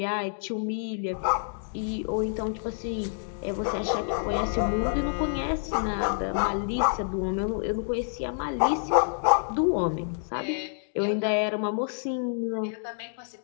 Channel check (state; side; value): silent; right; digital silence